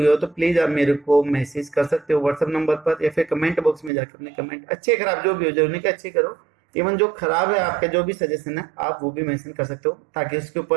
हो तो प्लीज आप मेरे को मैसेज कर सकते हो व्हाट्सएप नंबर पर, या फिर कमेंट बॉक्स में जाकर अपने कमेंट अच्छे खराब जो भी हो जाए उन्हें अच्छे करो। इवन जो खराब है आपका जो भी सजेशन है आप वो भी मेंशन कर सकते हो, ताकि उसके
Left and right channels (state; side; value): drops out; left; at 3.9 s